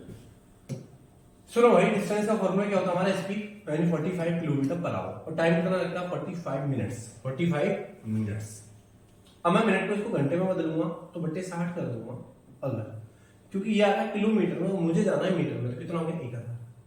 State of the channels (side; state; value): both; identical; correlation 1.00